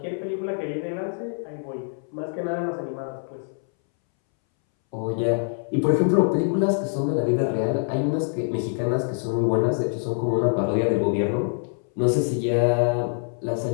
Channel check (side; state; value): right; silent; 62 dB below the other